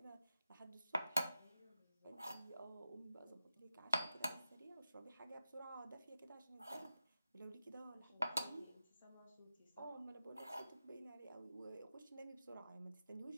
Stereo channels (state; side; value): inverted; both; correlation -0.91